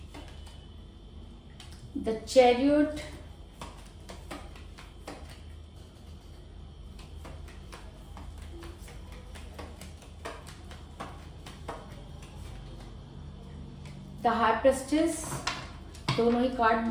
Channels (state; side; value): identical; both; correlation 1.00